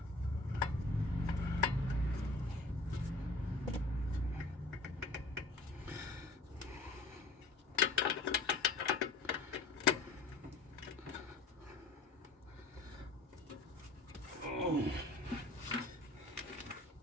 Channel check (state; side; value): quieter; right; 3.0 dB